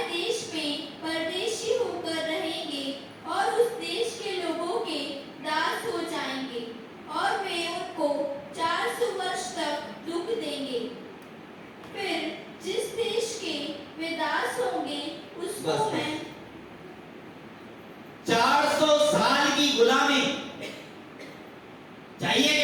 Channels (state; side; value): identical; both; correlation 1.00